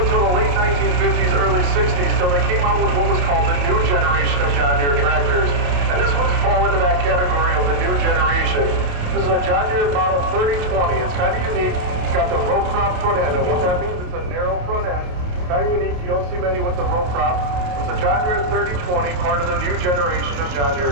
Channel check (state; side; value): late; left; 28 ms